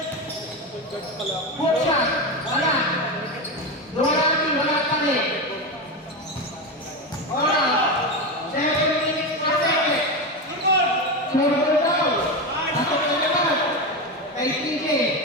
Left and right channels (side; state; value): both; normal; correlation 0.16